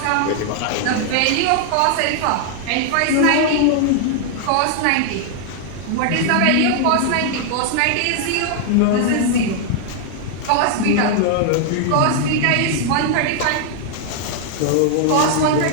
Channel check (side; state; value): both; different; correlation 0.00